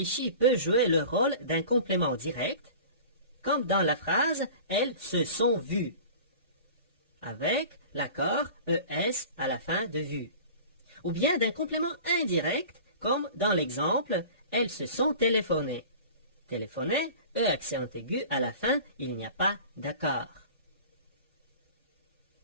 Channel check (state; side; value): inverted; both; correlation -0.40